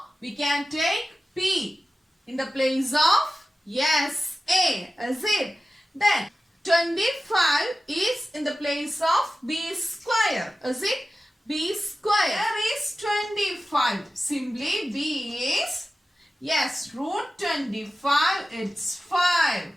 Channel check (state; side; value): normal; both; correlation 0.95